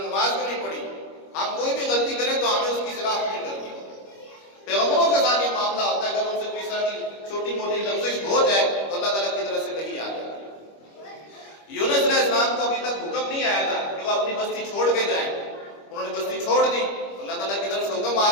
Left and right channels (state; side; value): late; right; 25 ms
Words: نماز کیوں نہیں پڑھی۔ ہم کوئی بھی غلطی کریں تو ہمیں اس کی اصلاح نہیں کرنی۔ پیغمبروں کے ساتھ یہ معاملہ ہوتا ہے، اگر ان سے کوئی طرح کی چھوٹی موٹی لفزش ہو جائے تو اللہ تعالیٰ کی طرف سے وحی آ جائے۔ یونس علیہ السلام کو ابھی تک حکم نہیں آیا تھا کہ وہ اپنی بستی چھوڑ کے جائیں، انہوں نے بستی چھوڑ دی، اللہ تعالیٰ کی طرف سے حکم آ